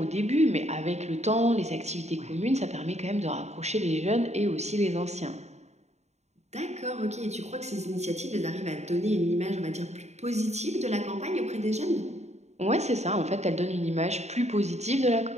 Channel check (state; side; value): late; left; 0.32 ms